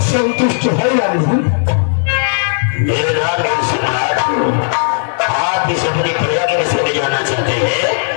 संतुष्ट है या नहीं? आप इस अपनी प्रजा के विषय में जानना चाहते हैं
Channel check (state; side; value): silent; right; digital silence